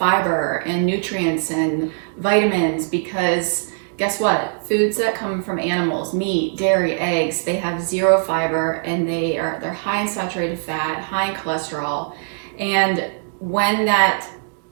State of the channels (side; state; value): left; silent; digital silence